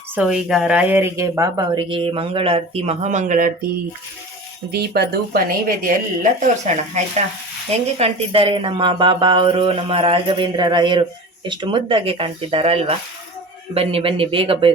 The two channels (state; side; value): normal; both; correlation 0.35